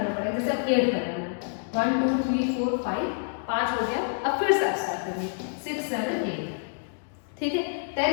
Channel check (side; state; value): right; silent; digital silence